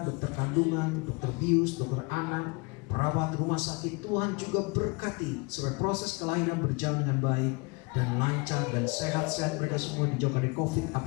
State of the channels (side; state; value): right; quieter; 28.7 dB